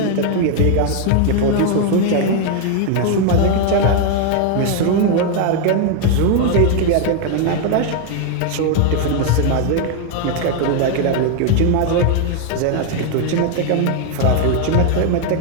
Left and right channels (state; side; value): different; both; correlation 0.00